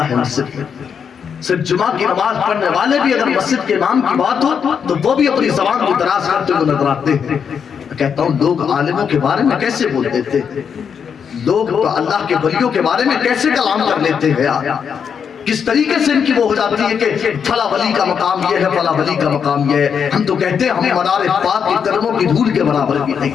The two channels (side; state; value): right; quieter; 7.0 dB